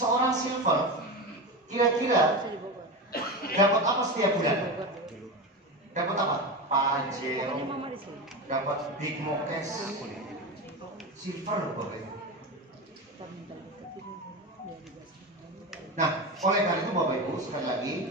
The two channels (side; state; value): both; normal; correlation 0.22